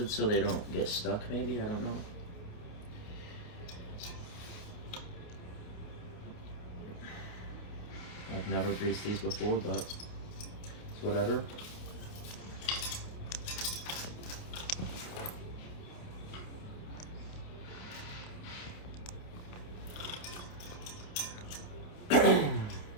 so they don't get stuck, maybe, I don't know. I've never greased these before, but it's whatever.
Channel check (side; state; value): right; late; 29 ms